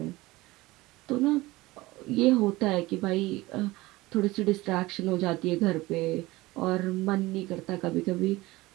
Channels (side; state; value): left; quieter; 19.8 dB